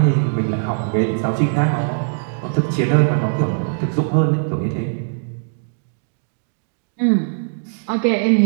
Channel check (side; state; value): left; silent; digital silence